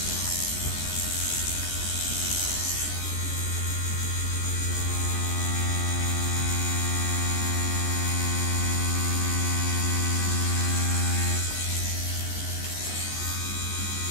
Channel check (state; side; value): late; right; 14 ms